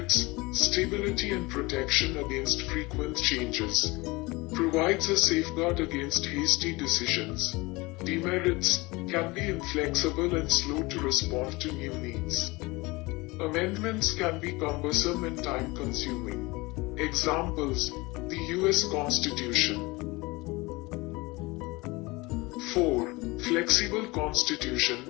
stability and protection against frequent changes, provides a safeguard against hasty decisions. Demerits: can be inflexible and slow to respond to new needs. Amendments can be cumbersome and time-consuming. Examples: the U.S. Constitution. 4. Flexible constitution.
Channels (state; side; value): quieter; right; 23.4 dB